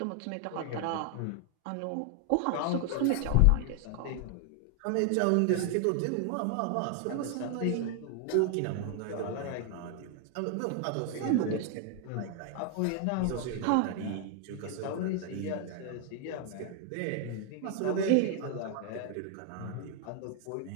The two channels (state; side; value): different; both; correlation 0.00